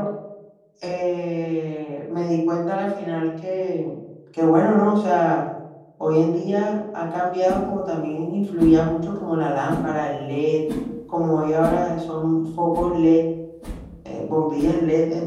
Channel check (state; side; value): identical; both; correlation 1.00